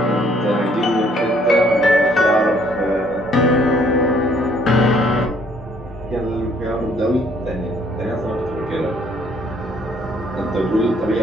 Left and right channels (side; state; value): both; normal; correlation 0.63